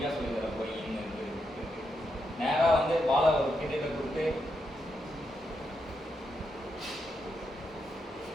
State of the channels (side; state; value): both; normal; correlation 0.83